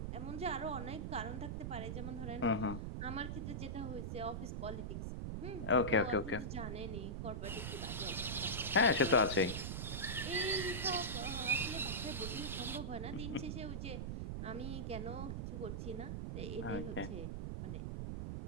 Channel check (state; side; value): noise; right; rumble, 3 dB below the sound